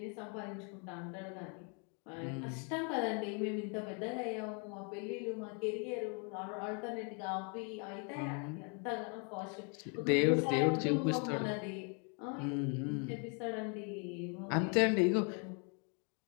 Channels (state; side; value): quieter; right; 37.2 dB